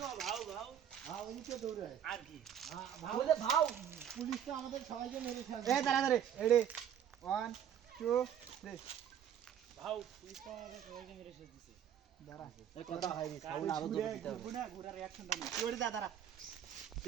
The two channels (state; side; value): quieter; left; 9.4 dB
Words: হ্যাঁ ওইদিকে দৌড়ে আর কি বলে ভাও পুলিশটা আমাদের সবাইকে মেরে ফেলবে। এই দাঁড়া দাঁড়া রেডি 1 2 3 ভাও পুলিশ তো আমাদের সবাইকে মেরে শেষ দিছে। দাঁড়া এই কথা হয় নি, সাউন্ড আরো জোরে দিতে হবে। গুনা গুড়া রিঅ্যাকশনটা না ওরে দাঁড়া,